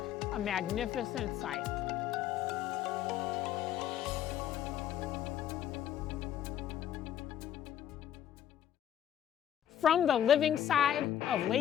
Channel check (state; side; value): quieter; right; 10.5 dB